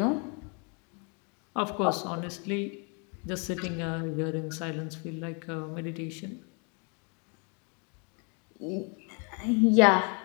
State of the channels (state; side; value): quieter; right; 35.3 dB